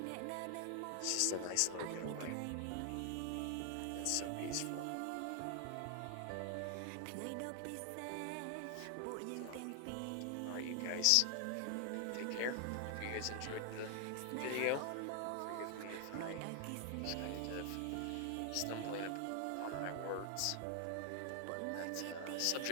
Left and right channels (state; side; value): different; both; correlation 0.00